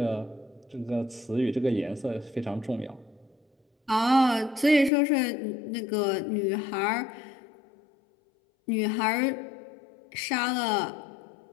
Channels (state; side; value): drops out; right; at 4.9 s